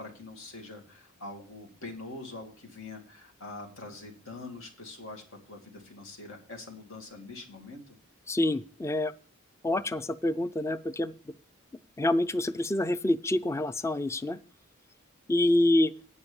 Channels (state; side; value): normal; both; correlation 0.82